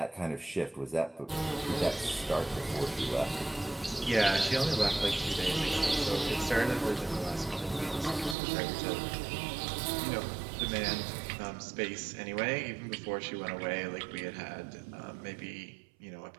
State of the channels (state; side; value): drops out; left; at 8.3 s